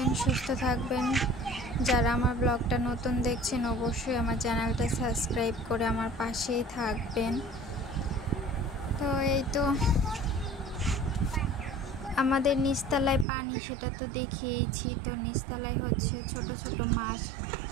সুস্থ থাকবেন। যারা আমার ব্লগটা নতুন দেখছেন অবশ্যই আমার চ্যানেলটা সাবস্ক্রাইব করে আমার পাশেই থাকবেন। তো এই তো আমাদের নিচতলায় পানি, সেটা তো দেখিয়েছি। তো নিচতলায় হচ্ছে ছোট ছোট মাছ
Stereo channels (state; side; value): drops out; left; at 13.2 s